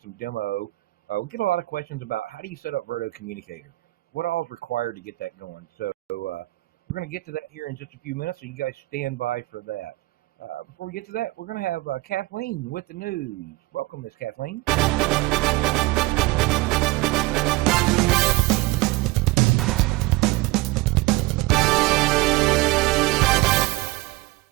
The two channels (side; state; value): left; quieter; 20.9 dB